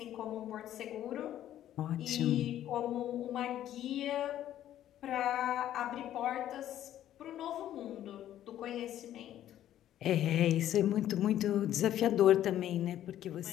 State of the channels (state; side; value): quieter; right; 12.0 dB